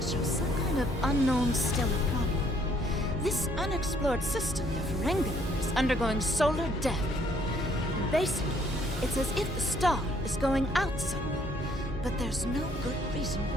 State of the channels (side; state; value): both; normal; correlation 0.64